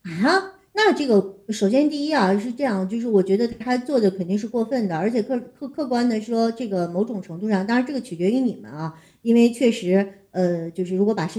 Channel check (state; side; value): identical; both; correlation 1.00